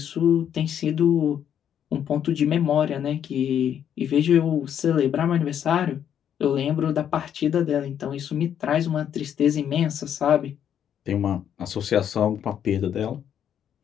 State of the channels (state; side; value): quieter; right; 9.3 dB